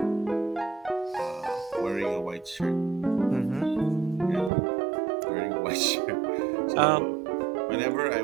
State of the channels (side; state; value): left; drops out; at 4.5 s